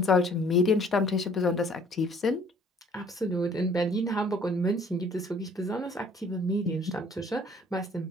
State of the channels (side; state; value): both; normal; correlation 0.56